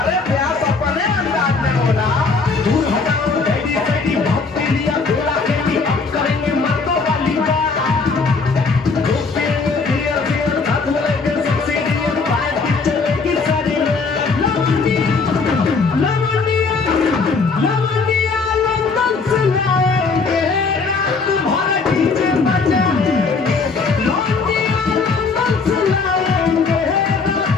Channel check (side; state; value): right; quieter; 4.5 dB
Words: प्यास अपने अंदाज में बोला। दूर हटाओ डैडी डैडी बहुत पी लिया थोड़ा कैंडी अब करेंगे मर्दों वाली बात। खूब पियेंगे बियर सीयर साथ में लेके सेक्सी बियर पैड टीचर लेके सारी रात। लवंडिया लवंडिया लंदन से लाएंगे रात भर डीजे बजाएंगे।